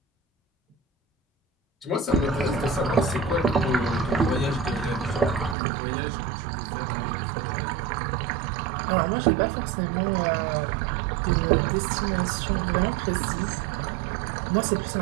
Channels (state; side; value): drops out; left; at 5.6 s